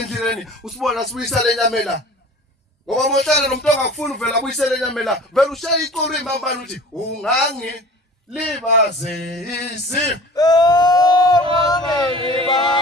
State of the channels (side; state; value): both; normal; correlation 0.42